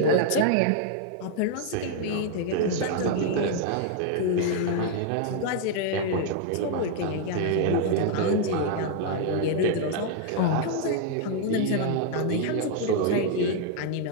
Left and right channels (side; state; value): both; different; correlation 0.00